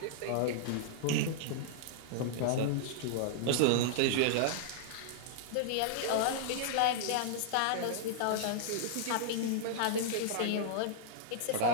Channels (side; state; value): both; different; correlation -0.02